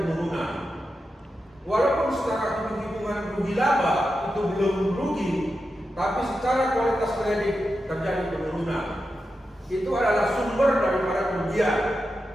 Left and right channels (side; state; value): both; normal; correlation 0.89